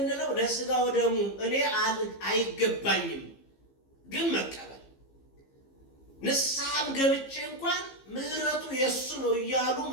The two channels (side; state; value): right; late; 15 ms